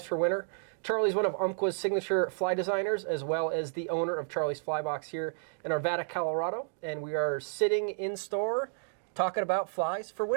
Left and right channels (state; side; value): silent; left; digital silence